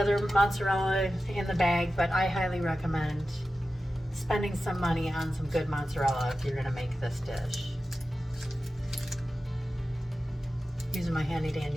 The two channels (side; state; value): both; normal; correlation 0.93